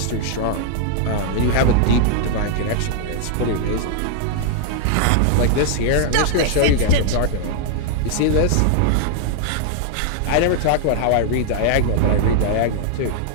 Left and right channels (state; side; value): different; both; correlation -0.01